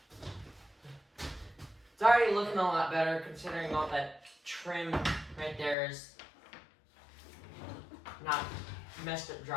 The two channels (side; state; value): right; drops out; at 5.8 s